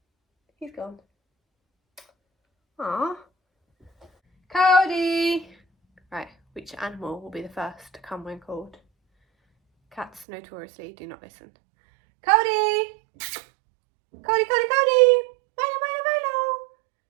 He's gone. Aww. Kodi! Right, which animal will be the first to come when called? Cats notoriously do not listen. Kodi! Kodi, Kodi, Kodi! Milo, Milo, Milo!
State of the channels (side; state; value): left; drops out; at 10.2 s